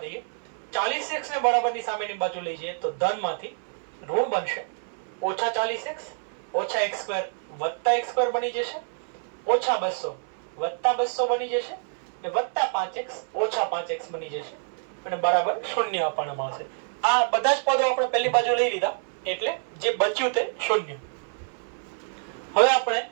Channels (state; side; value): silent; left; digital silence